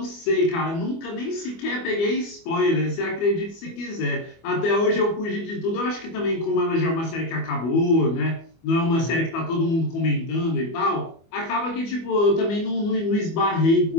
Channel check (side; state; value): right; late; 24 ms